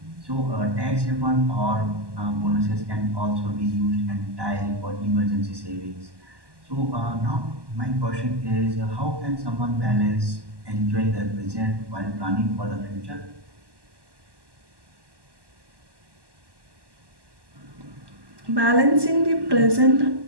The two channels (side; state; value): left; late; 1.1 ms